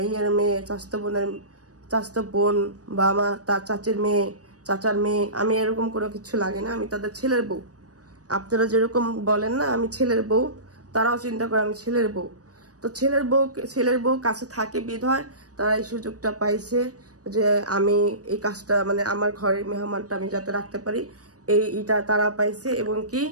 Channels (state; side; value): late; left; 0.67 ms